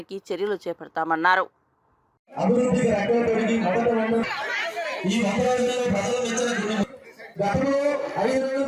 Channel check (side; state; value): both; identical; correlation 1.00